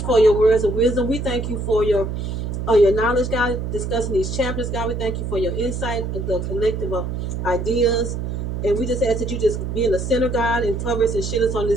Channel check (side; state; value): right; noise; hum, 4 dB below the sound